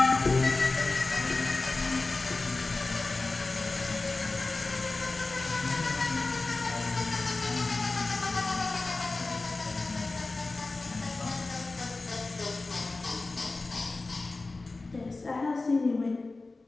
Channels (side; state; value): right; quieter; 3.4 dB